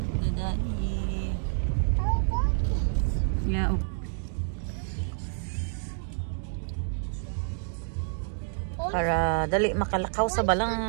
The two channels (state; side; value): silent; left; digital silence